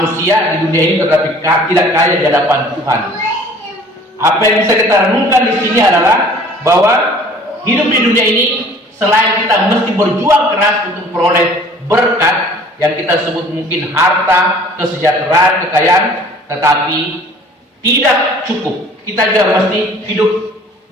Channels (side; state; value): both; normal; correlation 0.51